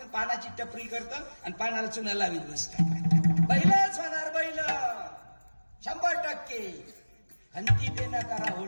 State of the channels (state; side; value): inverted; both; correlation -1.00